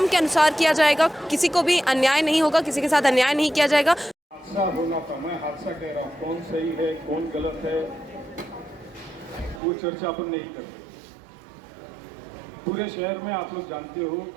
के अनुसार किया जाएगा, किसी को भी अन्याय नहीं होगा, किसी के साथ अन्याय नहीं किया जाएगा। हादसा होना था, मैं हादसा कह रहा हूँ, कौन सही है कौन गलत है वो चर्चा अपन नहीं करते। पूरे शहर में आप लोग जानते हो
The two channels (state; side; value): drops out; left; at 9.6 s